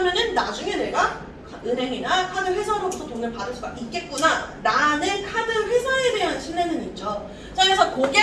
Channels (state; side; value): identical; both; correlation 1.00